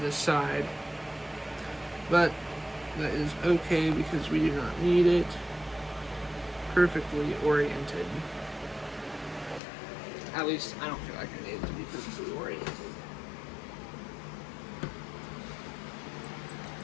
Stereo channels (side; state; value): right; drops out; at 9.6 s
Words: this side. But that is okay because we do not need it perfectly oriented. At least I don't feel like I need it to be perfectly oriented. I